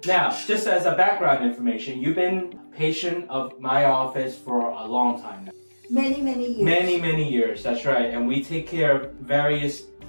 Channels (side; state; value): both; inverted; correlation -1.00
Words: now, just as a background information, you've been a patient of my office for a long time now. Many years. Many years, that's right. And we take care of various